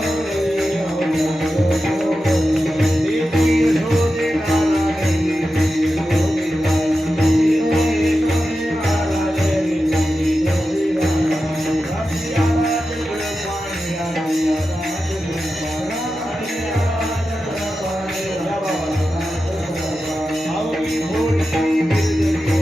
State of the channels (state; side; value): normal; both; correlation 0.92